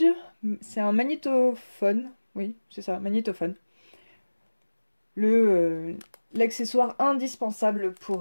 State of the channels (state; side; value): inverted; both; correlation -1.00